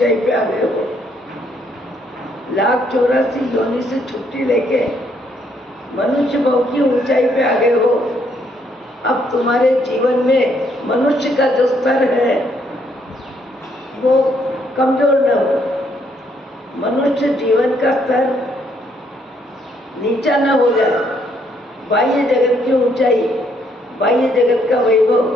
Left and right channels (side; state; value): both; normal; correlation 0.70